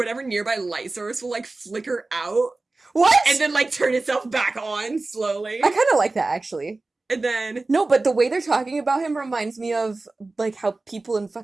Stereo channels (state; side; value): quieter; left; 3.3 dB